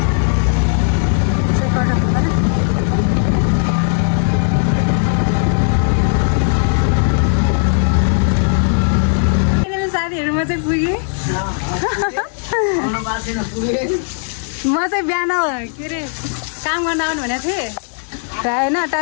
म चाहिँ बिहान के अरे काम गर्न आउनु भनेको थिएँ होइन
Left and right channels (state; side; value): silent; right; 68 dB below the other